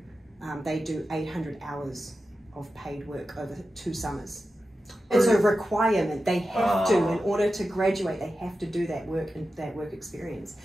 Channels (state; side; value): normal; both; correlation 0.92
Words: they do 800 hours of paid work over 2 summers. It's a requirement. They have to, in order to graduate, they have to do that work and that work experience,